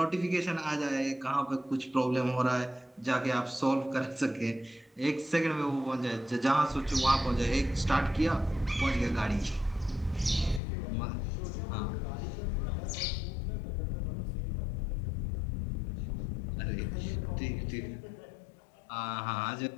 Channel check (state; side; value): drops out; right; at 10.6 s